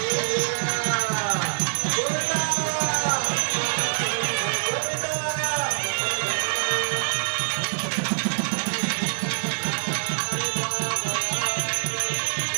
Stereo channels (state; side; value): silent; left; 56 dB below the other